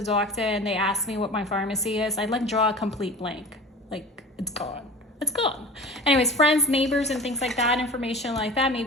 doctor and they ask me what my pharmacy is, I like draw a complete blank. Like it's gone. It's gone. Anyways, friends, neighbors, and things like that, information like that.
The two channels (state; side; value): normal; both; correlation 0.38